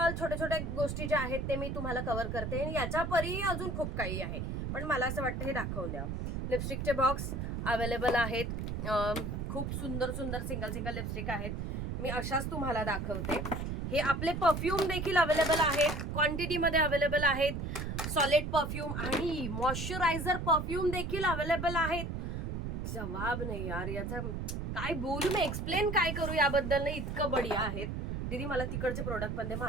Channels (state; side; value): noise; right; rumble, 3 dB below the sound